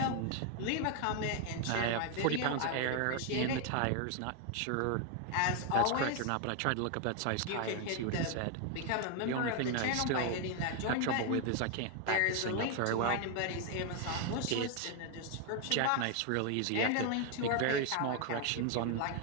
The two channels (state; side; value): different; both; correlation 0.01